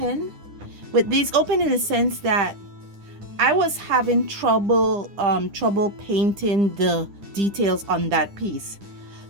with these, open in the sense that I was having trouble painting the details on that piece.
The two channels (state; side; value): late; left; 9.9 ms